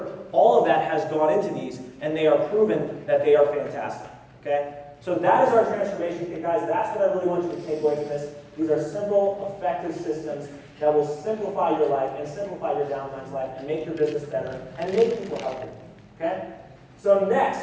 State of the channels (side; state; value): both; identical; correlation 1.00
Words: all of that has gone into these, and they are proven that they are fantastic, okay? So that is our transformation kit, guys. That's what I really want you to take away from this. These are simple, effective systems that will simplify your life and simplify your downline's life and make your business better and make people healthy. Okay? So